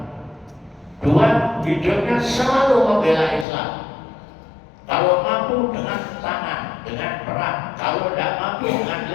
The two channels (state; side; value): drops out; right; at 3.5 s